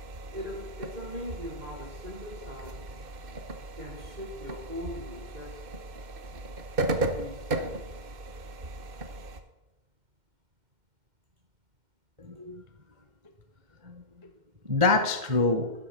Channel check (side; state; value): left; late; 2.1 ms